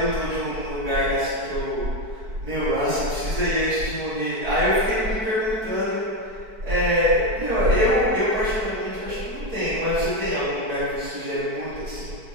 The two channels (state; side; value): late; left; 4.5 ms